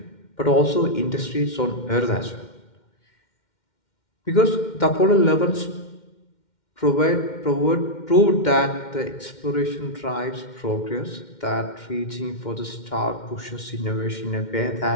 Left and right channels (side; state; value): right; late; 2.1 ms